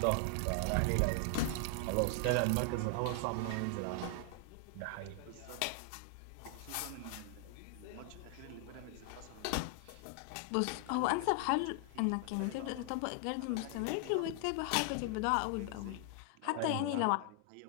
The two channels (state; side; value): different; both; correlation 0.00